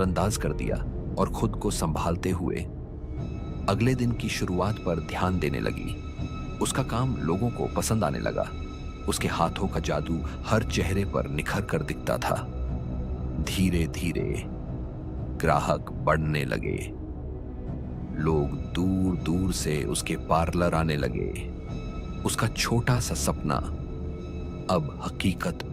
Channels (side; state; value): both; identical; correlation 1.00